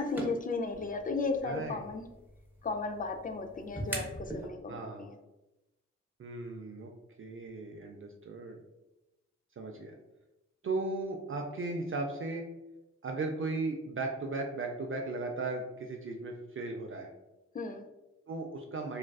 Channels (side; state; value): both; normal; correlation 0.30